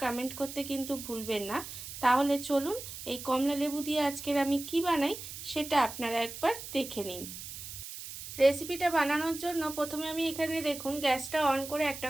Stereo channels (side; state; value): right; noise; hiss, 10 dB below the sound